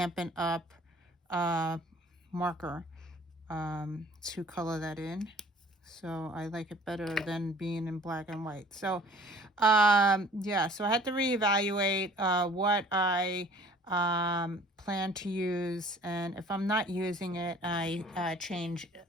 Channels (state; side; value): normal; both; correlation 0.51